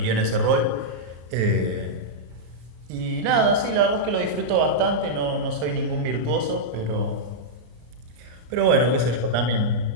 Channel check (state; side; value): late; left; 34 ms